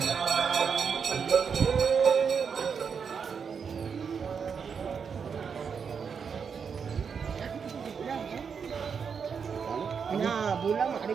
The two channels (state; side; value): quieter; left; 6.4 dB